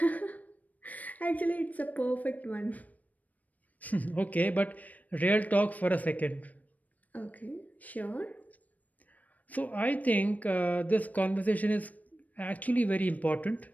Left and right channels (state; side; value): late; right; 0.075 ms